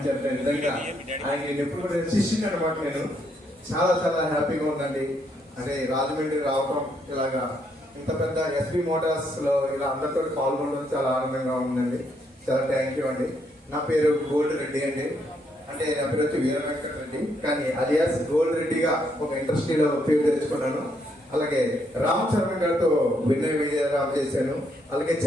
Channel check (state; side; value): normal; both; correlation 0.74